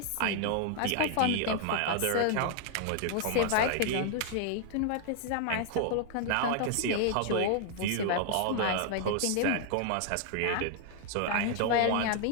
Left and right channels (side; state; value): both; different; correlation 0.00